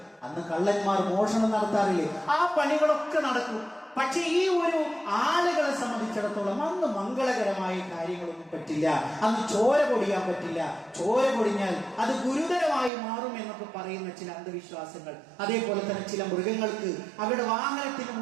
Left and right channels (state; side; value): drops out; left; at 12.9 s